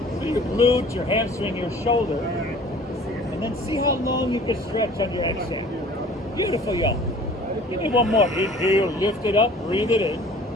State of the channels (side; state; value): both; normal; correlation 0.49